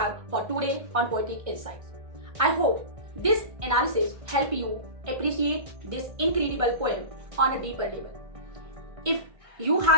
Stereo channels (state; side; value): late; left; 1.5 ms